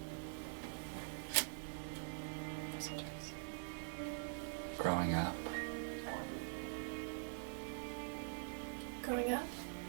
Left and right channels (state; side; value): silent; left; digital silence